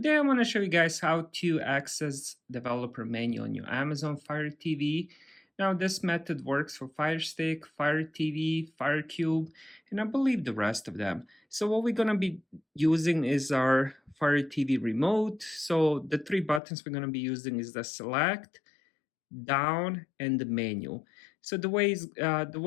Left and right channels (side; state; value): right; drops out; at 16.6 s